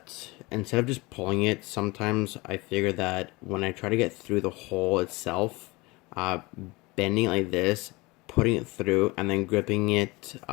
instead of just pulling it, sometimes I figure that when I try to get through the hole itself, bending it like this, putting it through, and then gripping it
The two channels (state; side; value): quieter; right; 23.7 dB